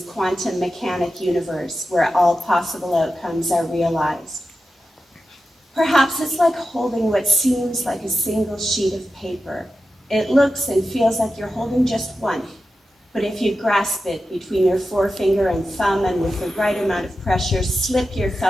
quantum mechanic universe where all possible outcomes are realized. Perhaps it's like holding what seems like a single sheet of paper. It looks and feels like you're holding just one, but if you grasp it between your forefinger and thumb and with the right amount of pressure, slip your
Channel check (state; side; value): normal; both; correlation 0.91